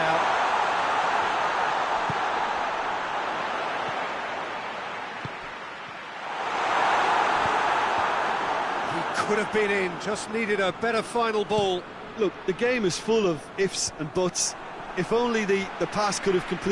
He could have been in, just needed a better final ball. Look, the game is full of ifs and buts. If only the pass could have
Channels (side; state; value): both; identical; correlation 1.00